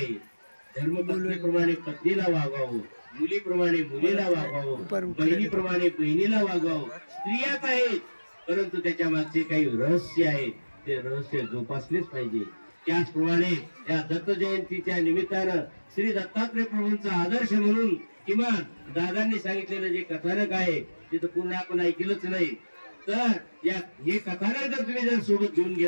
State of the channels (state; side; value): inverted; both; correlation -1.00